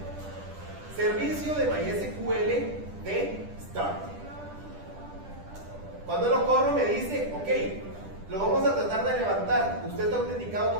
Servicio de MySQL de Start. Cuando lo corro me dice, ok, lo vamos a tratar de levantar. Usted está autenticado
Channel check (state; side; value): late; left; 10 ms